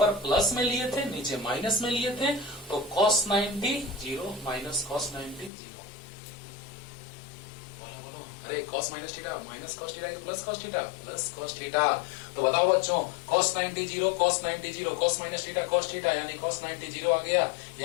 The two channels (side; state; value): right; drops out; at 5.5 s